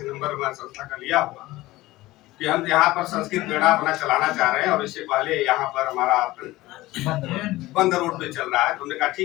नंबर हमारे संस्था का लिया हुआ कि हम यहाँ पर संस्कृत मेला अपना चलाना चाह रहे हैं और इससे पहले यहाँ पर हमारा बंद रोड पे चल रहा है। तो हमने कहा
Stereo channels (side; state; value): right; quieter; 18.2 dB